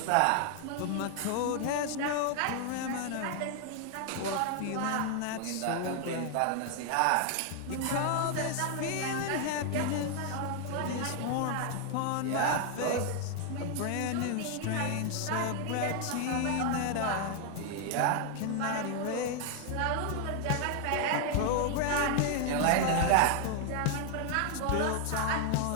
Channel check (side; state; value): both; different; correlation 0.00